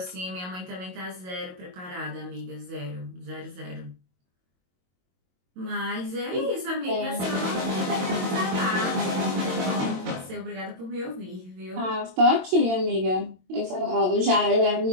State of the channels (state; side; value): late; left; 22 ms